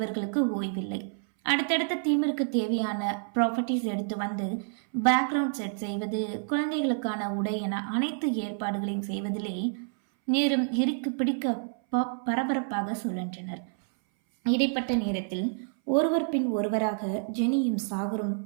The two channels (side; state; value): left; silent; 59 dB below the other